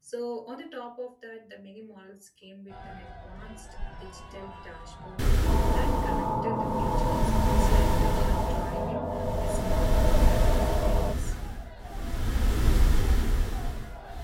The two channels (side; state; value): both; identical; correlation 1.00